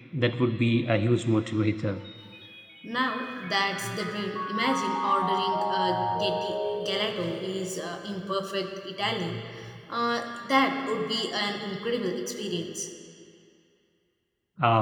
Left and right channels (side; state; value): both; identical; correlation 1.00